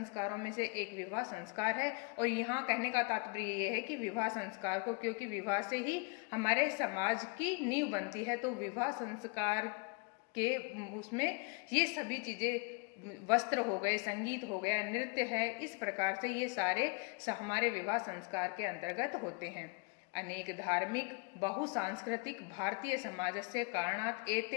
में से एक विवाह संस्कार है। और यहाँ कहने का तात्पर्य ये है कि विवाह संस्कार को, क्योंकि विवाह से ही हमारे समाज की नींव बनती है, तो विवाह संस्कार के उसमें ये सभी चीजें, वस्त्र हो गए, संगीत हो गया, नृत्य है, इस प्रकार से ये सारे हमारे विवाह संस्कार के अंतर्गत होते हैं। अनेक धार्मिक बहुसांस्कृतिक भारतीय समाजस्य कारणात्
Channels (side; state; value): right; quieter; 32.9 dB